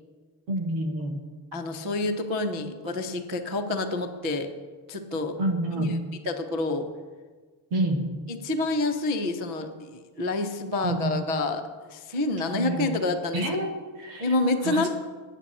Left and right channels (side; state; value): left; late; 6.2 ms